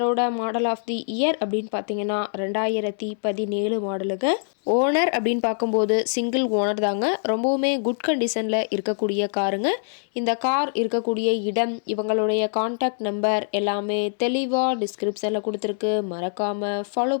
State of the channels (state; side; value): silent; right; 63 dB below the other